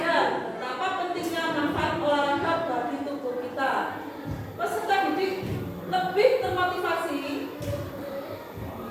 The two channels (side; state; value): both; identical; correlation 1.00